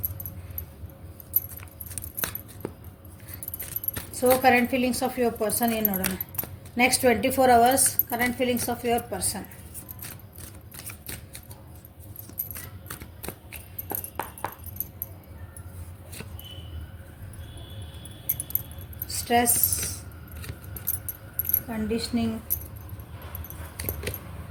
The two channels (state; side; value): identical; both; correlation 1.00